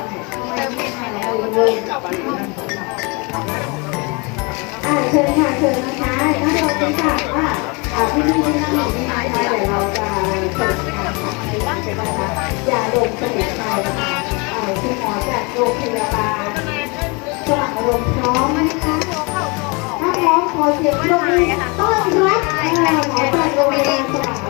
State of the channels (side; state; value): right; quieter; 29.4 dB